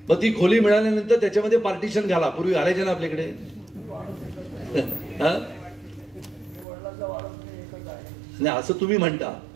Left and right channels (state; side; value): drops out; left; at 6.7 s